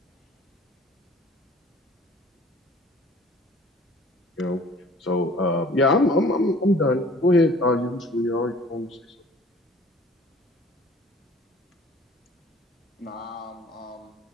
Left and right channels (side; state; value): both; normal; correlation 0.50